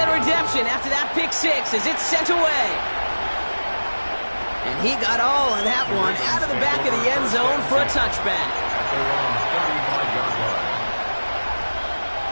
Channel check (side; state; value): both; inverted; correlation -1.00